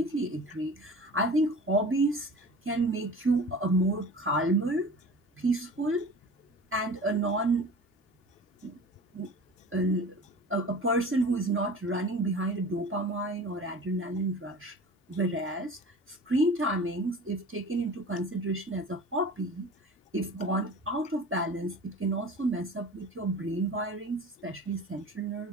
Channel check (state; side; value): normal; both; correlation 0.39